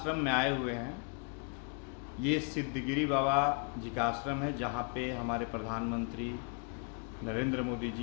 में आए हुए हैं ये सिद्धगिरी बाबा जी का आश्रम है, जहाँ पे हमारे प्रधानमंत्री नरेंद्र मोदी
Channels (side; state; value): right; quieter; 38.6 dB